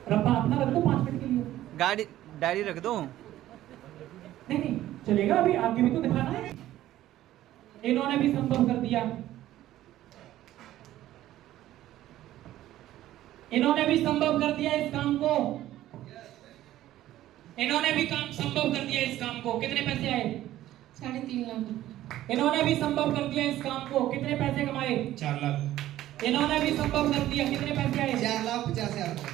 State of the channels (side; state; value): left; quieter; 14.0 dB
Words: रब्बा अपना रख दो 5 मिनट के लिए। गाड़ी डायरी रख दो। नहीं नहीं चलेगा, अभी आगे भी तो दिखाना है। इन्होंने भी संभव कर दिया, इन्होंने भी संभव कर दिया इस काम को, इन्होंने भी काम संभव कर दिया इस काम को। कितने पैसे आए? 3.5 लाख। इन्होंने भी संभव कर दिया इस काम को। कितने पैसे कमाए? 4 लाख। इन्होंने भी संभव कर दिया। कितने पैसे आए? 4,50,000।